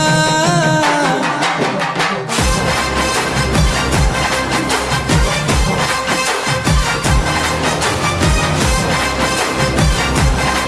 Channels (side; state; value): both; identical; correlation 1.00